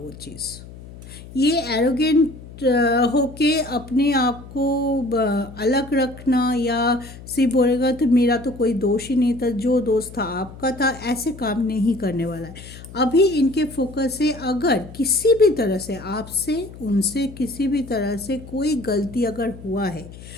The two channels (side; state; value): left; noise; hum, 16 dB below the sound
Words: चीज़। ये एरोगेंट होके अपने आप को अलग रखना या सिर्फ बोलेगा तो मेरा तो कोई दोष ही नहीं था, जो दोष था आपका था, ऐसे काम नहीं करने वाला है। अभी इनके फोकस है, अगर किसी भी तरह से आपसे उनसे किसी भी तरह से कोई गलती अगर हुआ है,